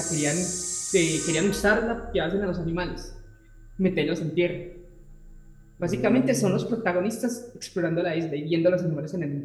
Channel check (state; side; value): identical; both; correlation 1.00